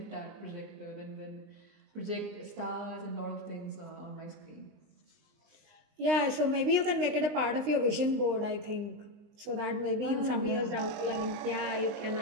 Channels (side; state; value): left; late; 19 ms